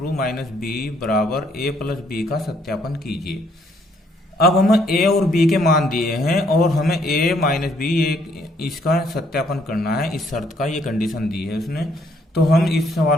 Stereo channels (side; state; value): both; normal; correlation 0.67